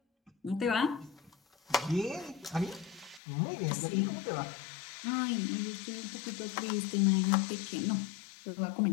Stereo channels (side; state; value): right; drops out; at 3.2 s